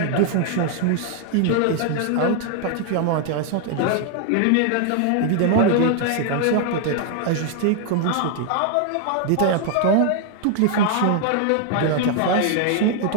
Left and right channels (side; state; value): both; different; correlation 0.00